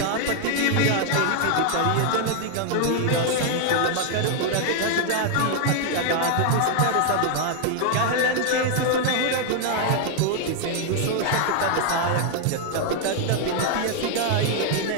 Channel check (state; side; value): different; both; correlation 0.00